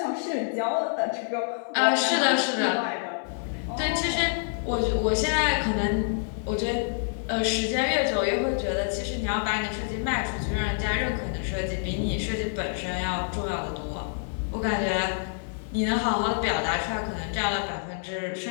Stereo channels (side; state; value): right; silent; digital silence